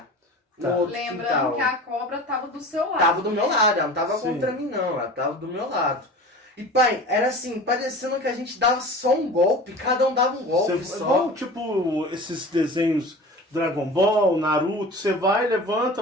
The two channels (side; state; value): both; normal; correlation 0.37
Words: Tá. No outro Lembrando quintal. que a cobra tava do seu lado. Tava do meu lado, ela não tava Sim. contra mim não, ela tava do meu lado. E pai, era assim, parecendo que a gente dava só um golpe, cada um dava um golpe Você, só. igual, tipo, esses desenhos Dragon Ball, Naruto, você vai,